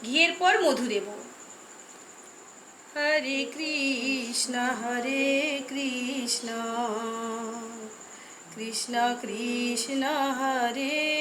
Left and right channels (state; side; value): identical; both; correlation 1.00